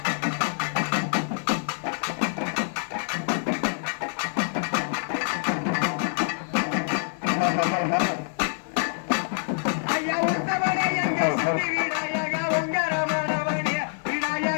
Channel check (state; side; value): silent; right; digital silence